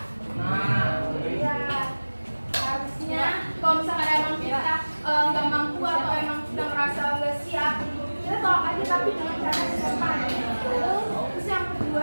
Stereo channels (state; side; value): inverted; both; correlation -1.00